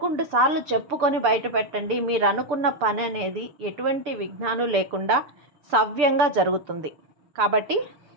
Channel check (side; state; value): left; late; 6.8 ms